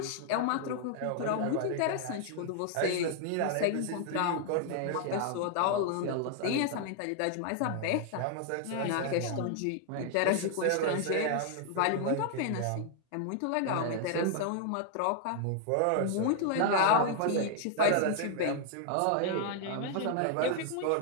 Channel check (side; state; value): both; different; correlation 0.00